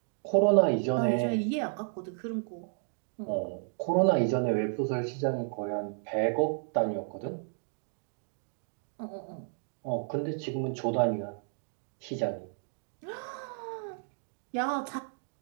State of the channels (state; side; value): silent; left; 56 dB below the other